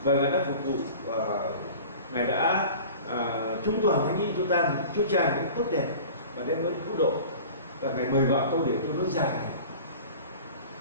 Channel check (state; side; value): inverted; both; correlation -0.40